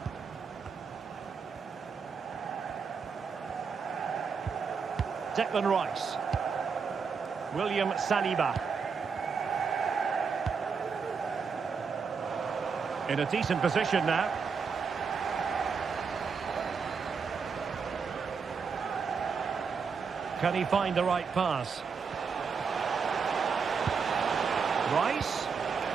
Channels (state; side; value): quieter; left; 5.7 dB